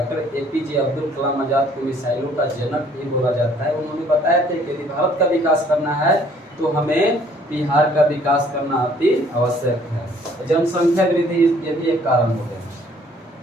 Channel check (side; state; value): both; normal; correlation 0.59